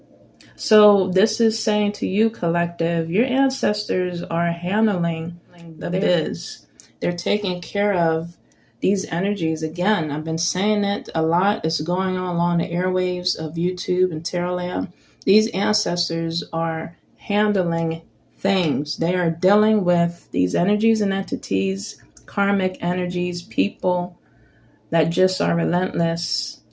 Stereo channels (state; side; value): identical; both; correlation 1.00